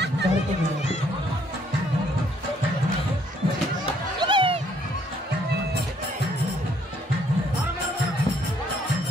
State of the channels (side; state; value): both; normal; correlation 0.66